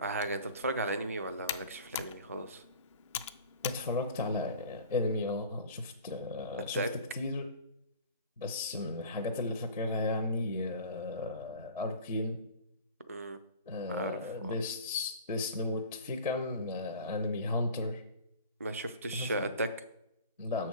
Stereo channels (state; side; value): inverted; both; correlation -0.42